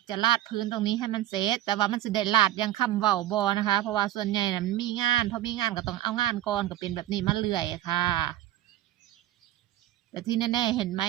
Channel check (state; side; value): quieter; left; 13.6 dB